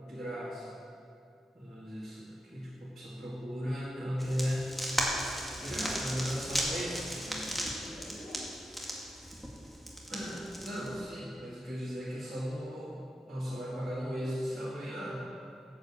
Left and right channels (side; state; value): both; normal; correlation 0.89